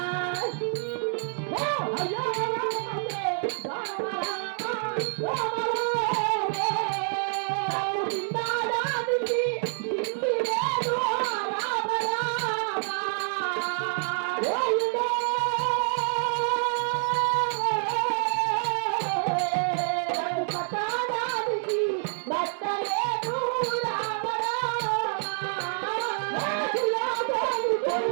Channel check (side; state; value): left; silent; 60 dB below the other